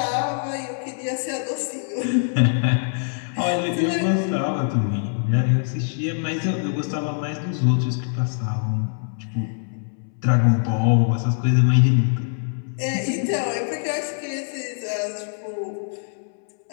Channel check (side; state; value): right; silent; 63 dB below the other